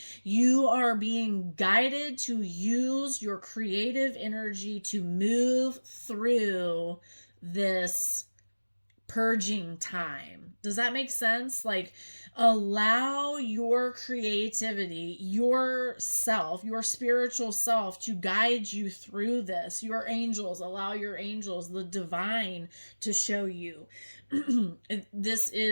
you are being guided to use your creative energy to move through this purging time. Does that make sense? Like, allow your creativity, yourself, your spiritual self to guide you through this. Your angels, allow your angels, the divine, to show you. This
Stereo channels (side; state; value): both; inverted; correlation -1.00